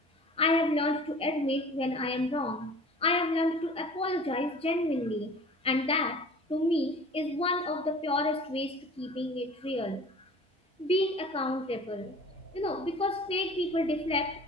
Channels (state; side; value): normal; both; correlation 0.44